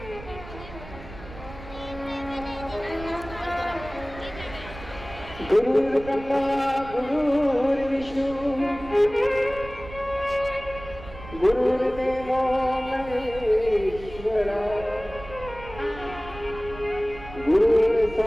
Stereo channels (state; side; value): noise; right; rumble, 15 dB below the sound